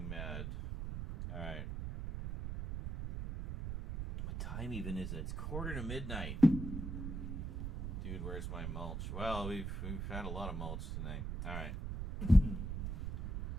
mad. Alright. What time even is it? It's 1:45. Dude, where's my mulch? Well, we've had a lot of mulch tonight. Alright.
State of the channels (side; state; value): right; noise; rumble, 4 dB below the sound